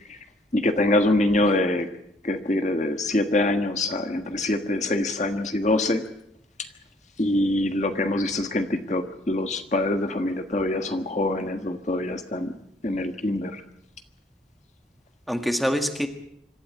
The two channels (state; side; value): normal; both; correlation 0.62